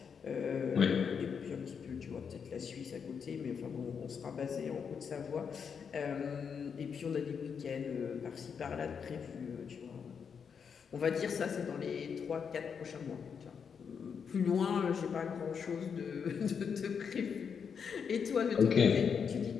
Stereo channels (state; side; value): quieter; right; 6.6 dB